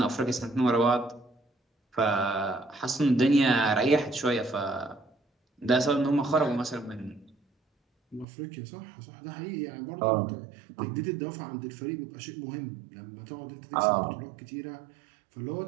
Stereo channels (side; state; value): left; drops out; at 8.2 s